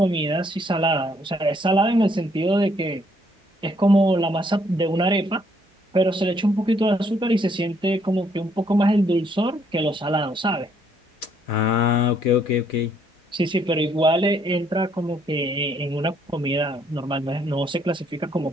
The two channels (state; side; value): normal; both; correlation 0.68